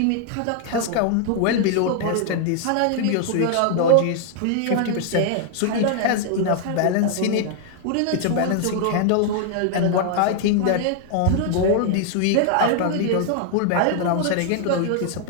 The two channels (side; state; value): both; different; correlation 0.00